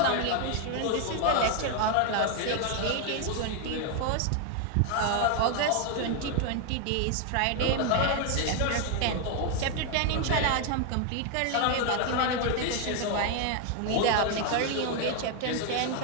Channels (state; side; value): different; both; correlation 0.01